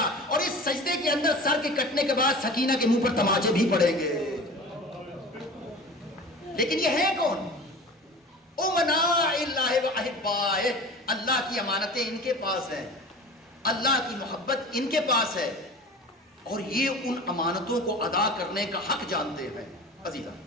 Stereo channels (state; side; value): normal; both; correlation 0.37